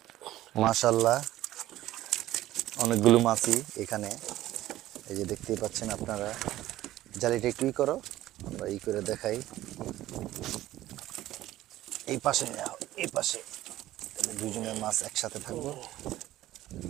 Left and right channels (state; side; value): quieter; left; 14.9 dB